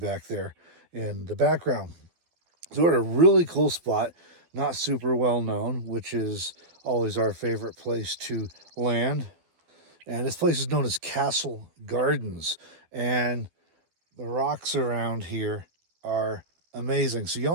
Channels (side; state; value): left; late; 12 ms